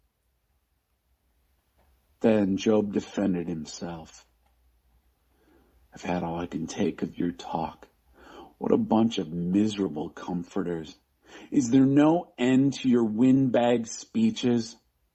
Then Job defended himself. I've had all I can take of your talk. What a bunch of miserable comforters. Is there no end to your windbag speeches?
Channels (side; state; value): both; identical; correlation 1.00